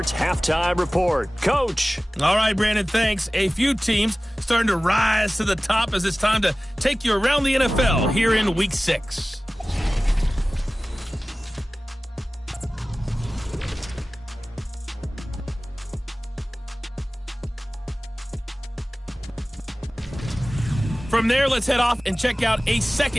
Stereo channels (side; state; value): both; normal; correlation 0.97